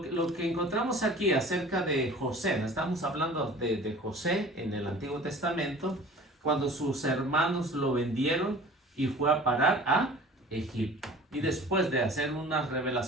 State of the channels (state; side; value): normal; both; correlation 0.44